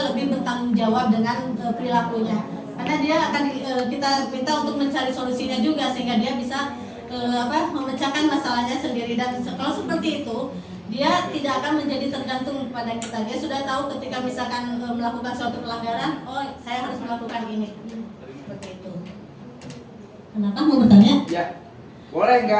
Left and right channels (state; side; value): identical; both; correlation 1.00